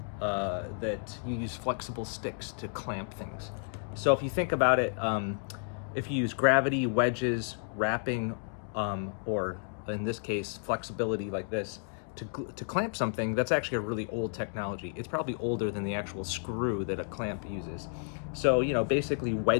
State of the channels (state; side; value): silent; right; 57 dB below the other